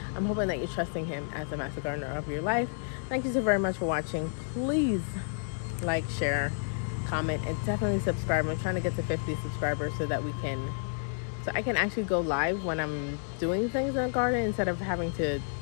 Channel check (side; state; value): right; silent; digital silence